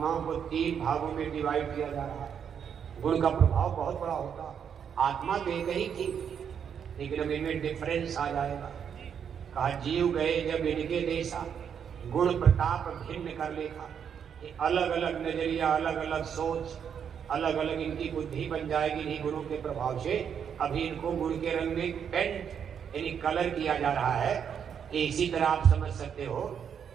को 3 भागों में डिवाइड किया जा रहा है। गुण का प्रभाव बहुत बड़ा होता, आत्मा तो एक ही थी, लेकिन अब इनमें डिफरेंस आ जाएगा। कहा जीव गए जब इनके देशा, गुण प्रताप भिन्न कर लेखा। ये अलग अलग नजरिया, अलग अलग सोच, अलग अलग इनकी बुद्धि बन जाएगी इन्हीं गुणों के प्रभाव से। अभी इनको गुण के रंग में पेंट यानी कलर किया जा रहा है। इसी तरह आप समझ सकते हो,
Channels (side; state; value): left; quieter; 7.8 dB